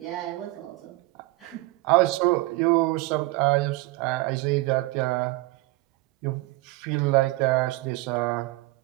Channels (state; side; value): quieter; left; 20.9 dB